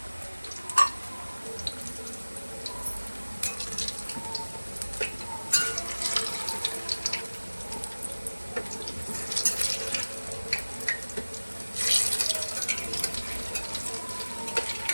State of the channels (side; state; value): both; inverted; correlation -1.00